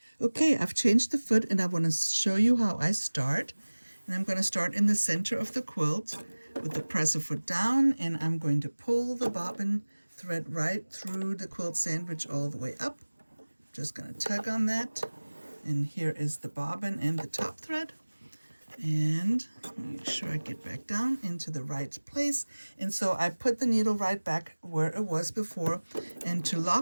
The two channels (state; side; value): inverted; both; correlation -1.00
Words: Okay, I've changed the foot, and I want to show you how I start. And I'm going to start in the center of the quilt with the presser foot down, and I'm going to pull the bobbin thread right through the quilt sandwich all the way up. Just going to tug on that, and here is the bobbin and the top thread. And make sure I get back down into the right place. And so I put the needle right back where it was before, and to